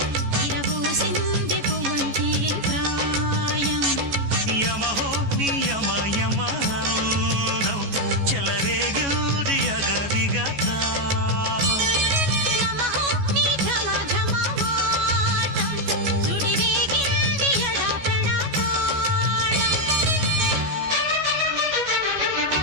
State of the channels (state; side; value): late; left; 14 ms